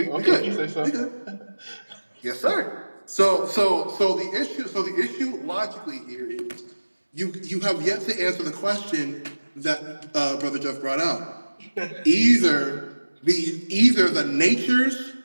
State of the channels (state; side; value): inverted; both; correlation -1.00